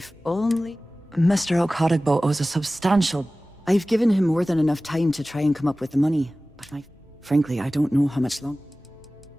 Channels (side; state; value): both; normal; correlation 0.97